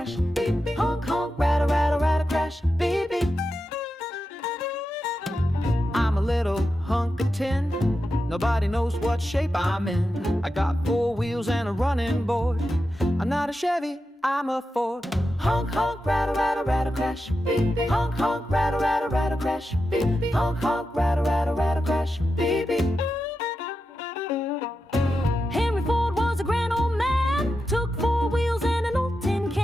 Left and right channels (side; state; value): both; normal; correlation 0.89